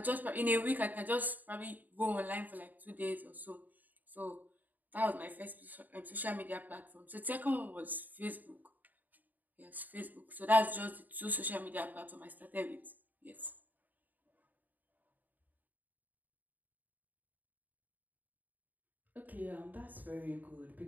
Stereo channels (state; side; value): late; left; 0.084 ms